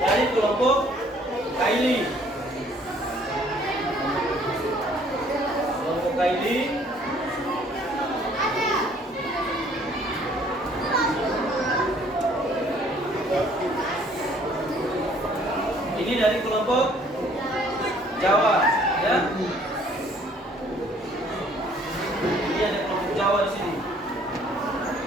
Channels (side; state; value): both; normal; correlation 0.59